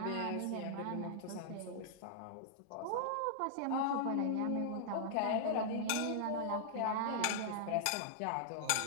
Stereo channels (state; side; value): different; both; correlation -0.01